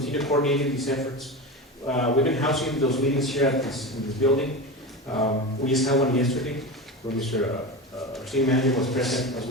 coordinating these efforts. We've been housing those meetings here in this building. We just had one yesterday where Mr. RCM manager was present, as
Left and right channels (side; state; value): both; normal; correlation 0.24